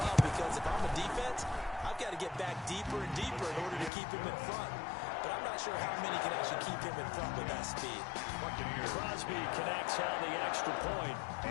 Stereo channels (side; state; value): right; drops out; at 3.9 s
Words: because if I'm a defense, I've got to get back deeper and deeper in order to keep him in front. But I'm not sure how many can actually keep him in front with that speed. Crosby connects on the extra point,